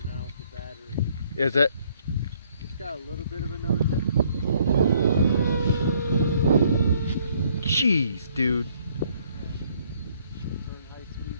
now with the battery. Is it? It's got a little bit of a nose. Jeez, dude. High speed.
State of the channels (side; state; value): both; inverted; correlation -0.65